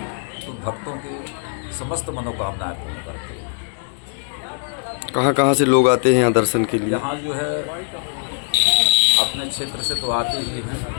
तो भक्तों के समस्त मनोकामनाएं पूर्ण करते हैं। कहाँ से लोग आते हैं यहाँ दर्शन के लिए? यहाँ जो है अपने क्षेत्र से तो आते ही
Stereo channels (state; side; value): silent; right; 65 dB below the other